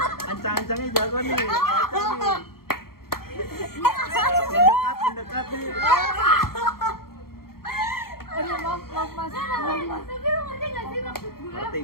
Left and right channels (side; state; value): right; late; 0.94 ms